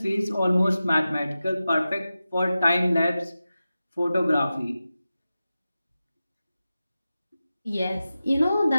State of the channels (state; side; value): inverted; both; correlation -0.94